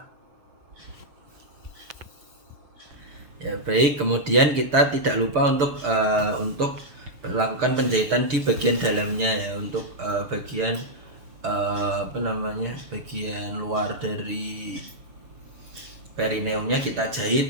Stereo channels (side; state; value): left; late; 6.8 ms